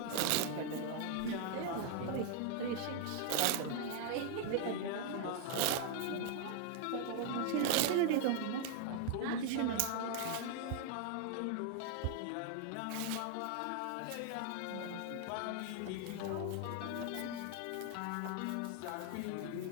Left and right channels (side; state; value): both; different; correlation 0.00